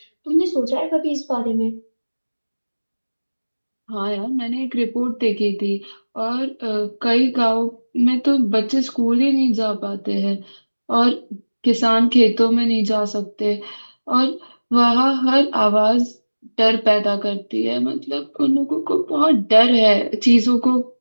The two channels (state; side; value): inverted; both; correlation -1.00